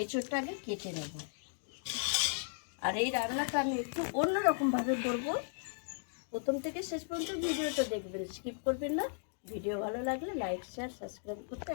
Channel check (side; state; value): right; silent; digital silence